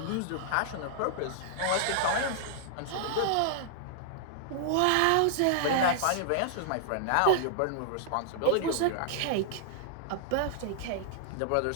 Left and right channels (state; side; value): different; both; correlation -0.01